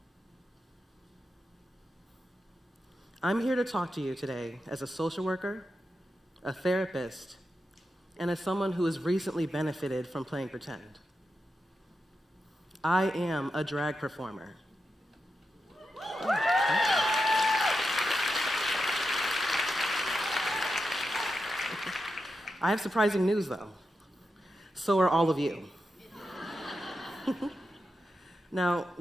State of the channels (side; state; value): both; normal; correlation 0.88